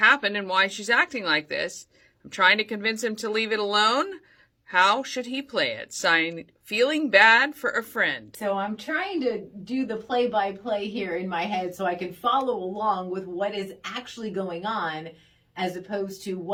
and why she's acting like this. I'm trying to convince him to leave it alone. How should he play it? Signed, feeling bad for a friend. So I'm trying to do the play-by-play here in my head so I can follow along with what is actually going on as opposed to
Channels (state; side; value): identical; both; correlation 1.00